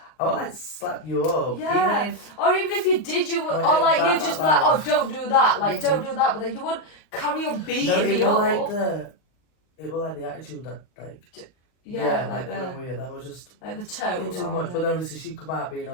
I would like slap you up. Yeah. Even if Or even if you did, you would, Like, or like bad you'd just be that like, oh, life. don't do that, like Mhm. don't do that, but then you would carry on beating no, me it up. was like the attitude that like like went the weird. That was just like the a tone. bit too rather much. than- But then obviously she come out being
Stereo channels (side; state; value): right; late; 39 ms